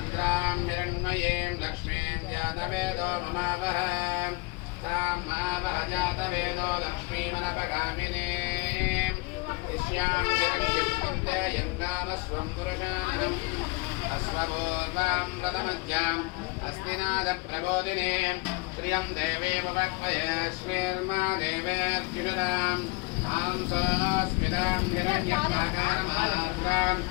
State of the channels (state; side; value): quieter; right; 25.7 dB